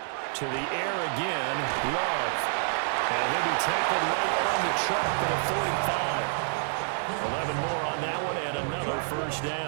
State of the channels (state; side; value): silent; left; 59 dB below the other